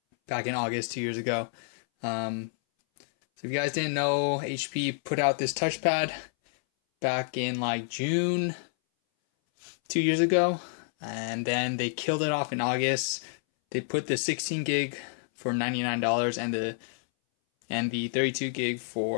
back in August 2 years ago. So if you guys didn't know, HP put out this touchpad back in like June 2 years ago, and then they killed it off in August. They put the 16 gig for $99 and the 32 gig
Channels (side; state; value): right; silent; 59 dB below the other